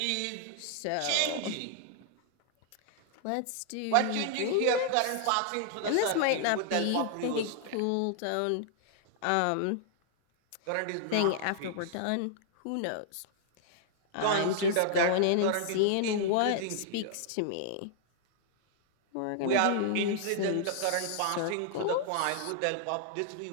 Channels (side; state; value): both; different; correlation -0.01